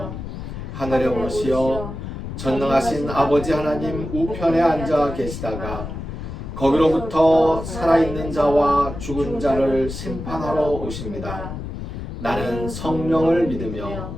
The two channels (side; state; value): left; noise; rumble, 8 dB below the sound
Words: 하늘에 오르시어 전능하신 아버지 하나님 우편에 앉아 계시다가 거기로부터 살아있는 자와 죽은 자를 심판하러 오십니다. 나는 성령을 믿으며